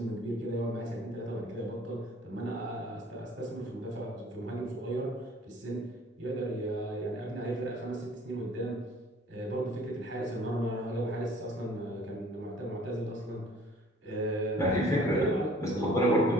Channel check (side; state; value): both; normal; correlation 0.53